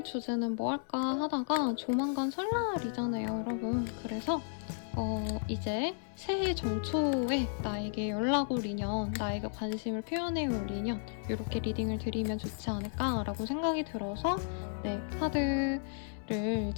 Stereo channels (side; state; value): right; silent; 55 dB below the other